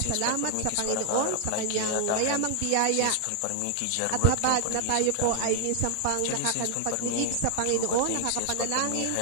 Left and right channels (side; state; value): both; different; correlation 0.00